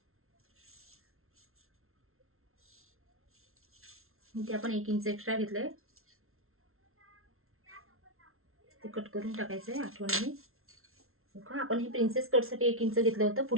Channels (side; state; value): left; late; 0.62 ms